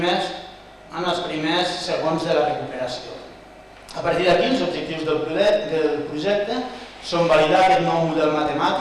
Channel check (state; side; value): identical; both; correlation 1.00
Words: primers segons de la recuperació. A partir d'aquí, els objectius del projecte són validar aquest nou model